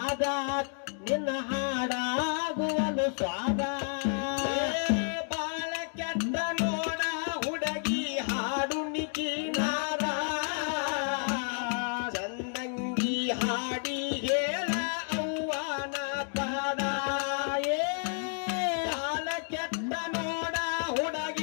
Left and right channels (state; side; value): silent; right; 57 dB below the other